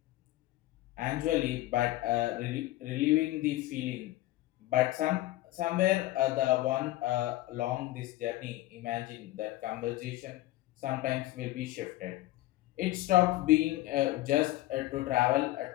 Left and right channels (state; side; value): quieter; right; 16.7 dB